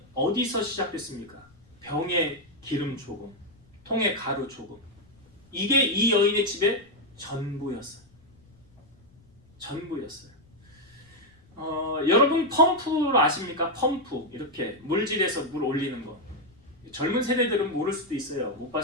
어디서 시작됐습니까? 병에 기름 조금, 통에 가루 조금. 이게 이 여인의 집의 전부였어요. 전부였어요. 여러분 펌프 아십니까? 펌프 이렇게 물질에서 물 올리는 거. 젊은 세대들은 모를 수도 있어요. 못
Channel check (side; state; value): left; noise; rumble, 29 dB below the sound